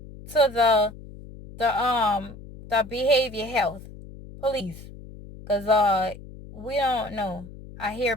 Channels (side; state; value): left; noise; hum, 16 dB below the sound